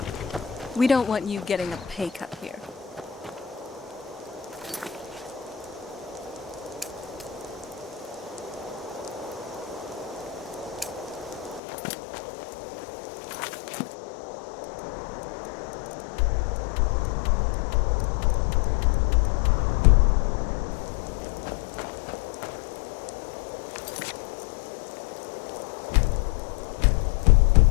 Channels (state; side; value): drops out; right; at 11.6 s